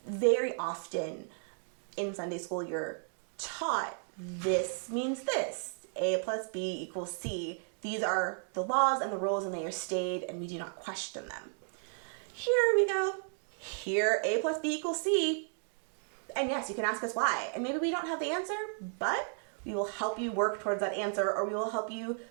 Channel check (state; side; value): silent; left; 55 dB below the other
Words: Very often in Sunday school, you're taught this means this, A plus B equals C. These are the laws and the rules, and they are stated, and we do not question them. Here we go. Here, A plus B equals C. And yes, you can ask us why. And maybe we don't have the answer, but we will help you work towards that answer, or we will help you